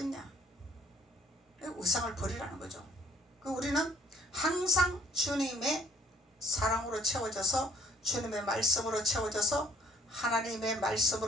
우상을 버리라는 거죠. 우리는 항상 주님의 사랑으로 채워져서, 주님의 말씀으로 채워져서, 하나님의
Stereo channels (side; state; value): both; normal; correlation 0.61